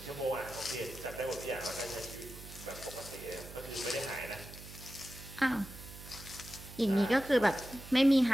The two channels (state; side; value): noise; right; hum, 14 dB below the sound